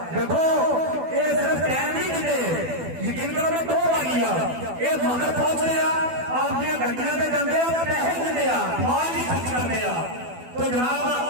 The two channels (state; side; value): late; left; 12 ms